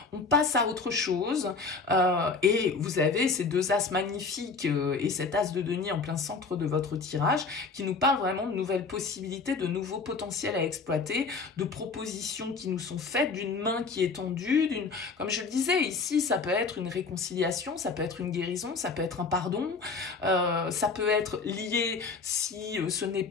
on passe à autre chose et vous avez ces deux as magnifiques et cet as de denier en plein centre de votre tirage qui nous parlent vraiment de nouvelles possibilités, de nouveaux potentiels à exploiter, de propositions qui nous sont faites, d'une main qui est tendue, comme je le disais, ici, ça peut être une réconciliation, ça peut être une guérison, ça peut être un pardon, ça peut être lié, si ce n'est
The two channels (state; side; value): quieter; right; 4.5 dB